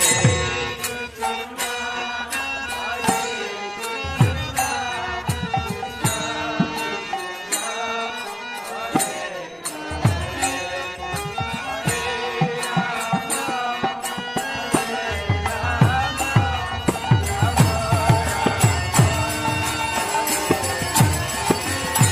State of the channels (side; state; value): both; identical; correlation 1.00